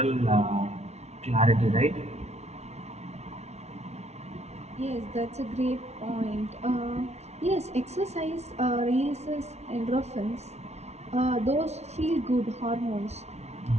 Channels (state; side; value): late; left; 0.31 ms